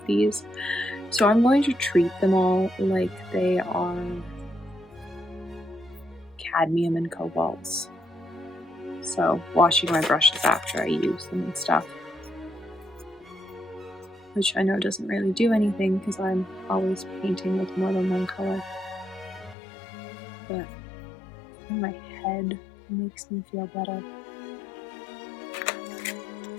these. So I'm going to treat them all like they are cadmium and cobalts. So washing my brushes after I use them and stuff. Which I know doesn't really do anything because I'm always painting with more than one color. But in my head, it makes me feel better.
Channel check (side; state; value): right; drops out; at 19.6 s